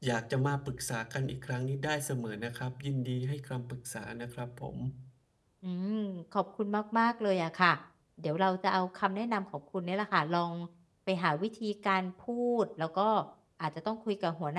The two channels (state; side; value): identical; both; correlation 1.00